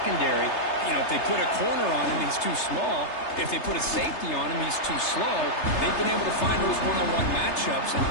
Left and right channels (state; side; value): late; right; 3.3 ms